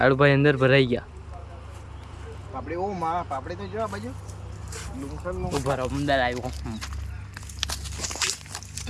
અંદર ભરાઈ ગયા. પાપડી ઓ માં પાપડી તો જો આ બાજુ ઉભા રહો અમદાવાદ આવ્યો.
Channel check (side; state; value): both; identical; correlation 1.00